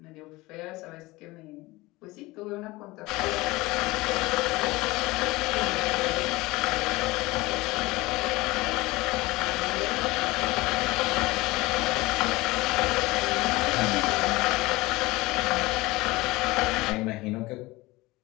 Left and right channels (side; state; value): right; quieter; 20.9 dB